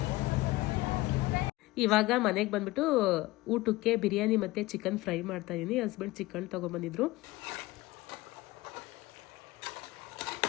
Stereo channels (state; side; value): quieter; right; 19.6 dB